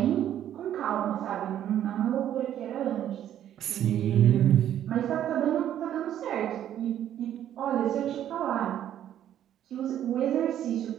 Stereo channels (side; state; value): left; quieter; 11.0 dB